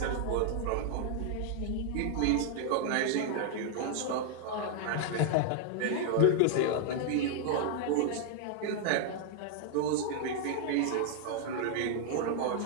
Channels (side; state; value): both; different; correlation 0.00